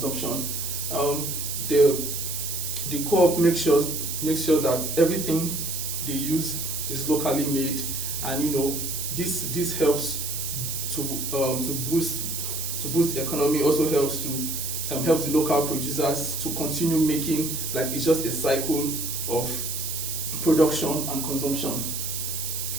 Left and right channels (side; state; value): right; noise; hiss, 4 dB below the sound